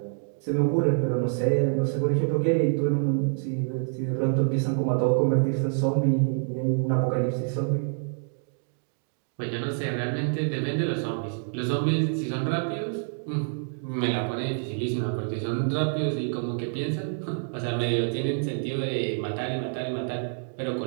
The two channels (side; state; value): left; silent; digital silence